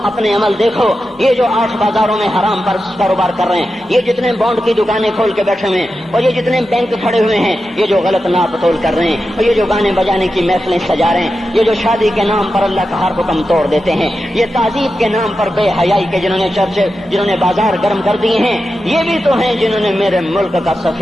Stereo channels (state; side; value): normal; both; correlation 0.90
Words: اپنے عمل دیکھو۔ یہ جو 8 بازاروں میں حرام پر کاروبار کر رہے ہیں، یہ جتنے بانڈ کی دکانیں کھول کے بیٹھے ہوئے ہیں، اور یہ جتنے بینک کھڑے ہوئے ہیں، یہ جو غلط ناپ تول کر رہے ہیں، اور یہ جو گانے بجانے کی محفلیں سجا رہے ہیں، یہ جو شادی کے نام پر اللہ کا ہر حکم توڑ دیتے ہیں، یہ تعذیب کے نام پر بے حیائی کے جنہوں نے بازار گرم کر دیے ہیں، یہ بھی تو ہیں جنہوں نے میرے ملک کا